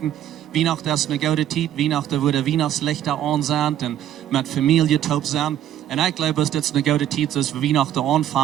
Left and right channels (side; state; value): left; quieter; 11.3 dB